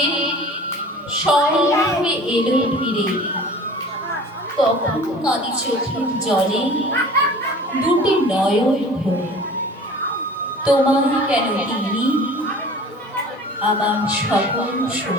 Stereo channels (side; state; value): both; normal; correlation 0.44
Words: স্বর্ণে এলো ফিরে। তখন কাঁদি চোখের জলে দুটি নয়ন ভরে। তোমায় কেন তিনি আমার সকল